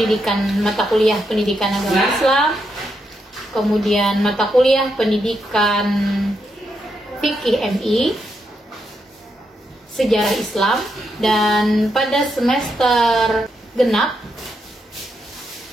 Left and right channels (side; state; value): both; normal; correlation 0.81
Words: mata kuliah pendidikan agama Islam, kemudian mata kuliah pendidikan fikih MI, sejarah Islam, dan pada semester genap